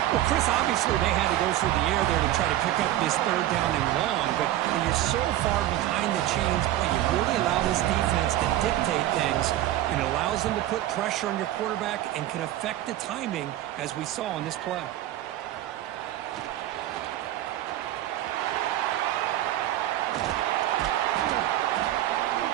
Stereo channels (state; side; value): quieter; left; 14.0 dB